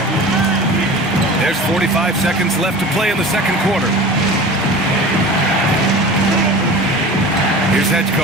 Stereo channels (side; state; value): both; normal; correlation 0.37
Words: There's 45 seconds left to play in the second quarter. Here's